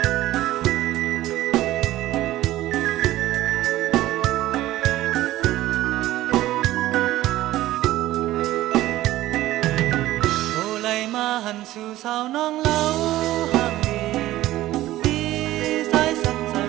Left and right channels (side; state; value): left; quieter; 15.5 dB